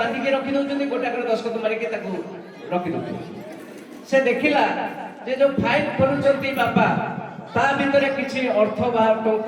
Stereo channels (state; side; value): identical; both; correlation 1.00